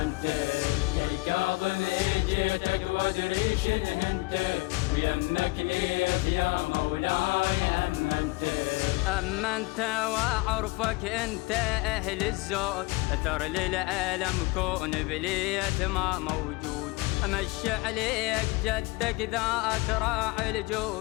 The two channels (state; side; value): quieter; right; 23.7 dB